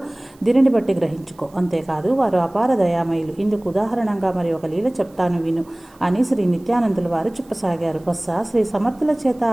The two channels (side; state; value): right; noise; hiss, 30 dB below the sound